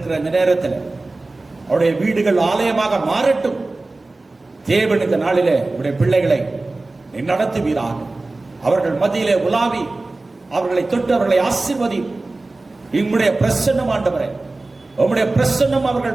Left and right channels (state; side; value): quieter; left; 3.2 dB